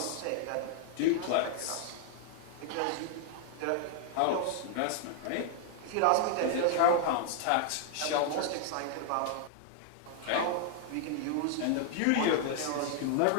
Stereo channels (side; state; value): both; different; correlation 0.00